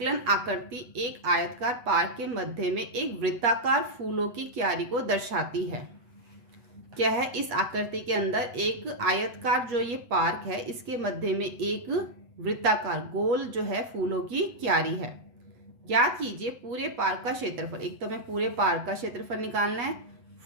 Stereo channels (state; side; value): late; left; 8.4 ms